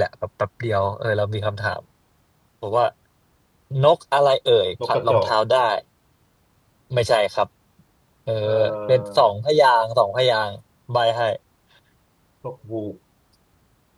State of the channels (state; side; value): identical; both; correlation 1.00